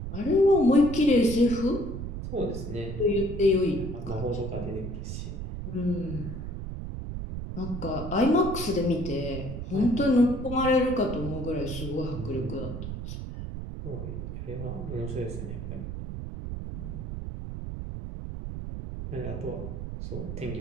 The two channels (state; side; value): noise; right; rumble, 6 dB below the sound